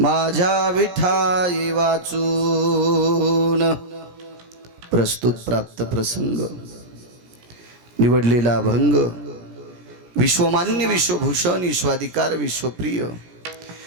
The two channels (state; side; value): late; left; 17 ms